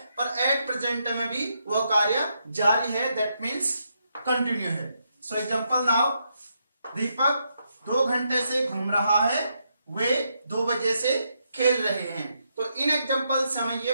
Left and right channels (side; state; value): both; inverted; correlation -0.80